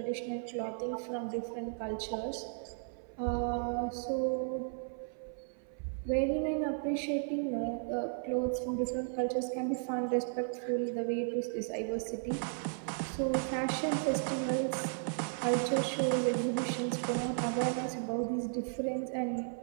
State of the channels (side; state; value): left; silent; 55 dB below the other